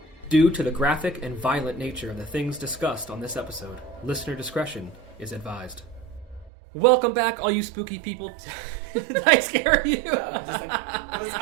Due to the graphic and violent nature of the things discussed on this episode, listener discretion is advised. Welcome back, all you spooky people. Did I scare you? No, I'm just like,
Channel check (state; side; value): drops out; left; at 6.5 s